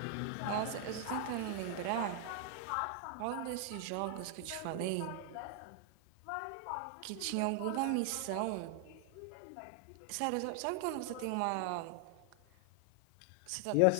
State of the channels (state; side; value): different; both; correlation 0.00